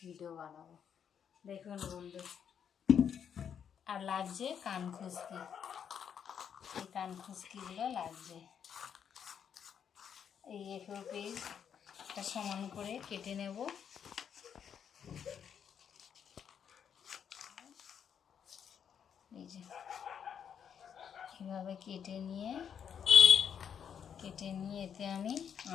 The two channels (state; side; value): quieter; right; 8.0 dB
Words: ভিডিও বানাবো। দেখুন বন্ধু, আর লাগছে কান খুশকি, এই কান খুশকিগুলো লাগছে। এই এফো পিস একটা সমান করে কেটে নেব। এই যে এভাবে কেটে নিয়ে এতে আমি